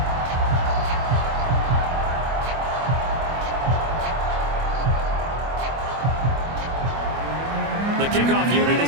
The kickoff unit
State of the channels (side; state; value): left; late; 24 ms